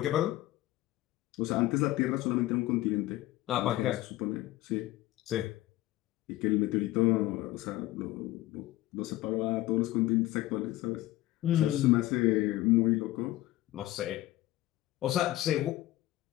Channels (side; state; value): right; quieter; 16.5 dB